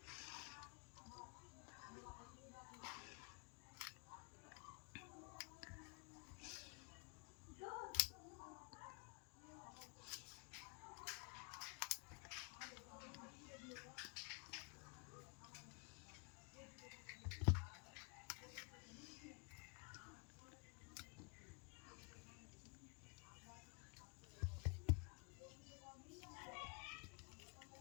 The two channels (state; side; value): quieter; right; 36.0 dB